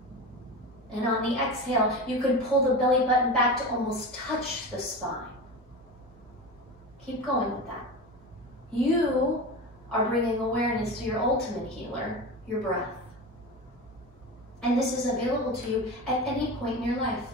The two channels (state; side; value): normal; both; correlation 0.27